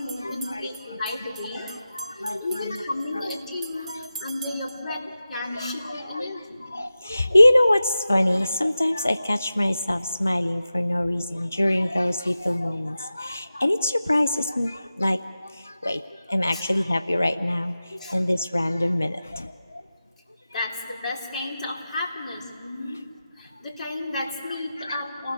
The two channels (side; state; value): both; inverted; correlation -0.93